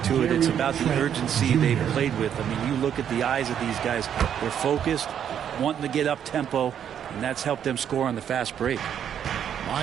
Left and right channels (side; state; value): left; quieter; 9.1 dB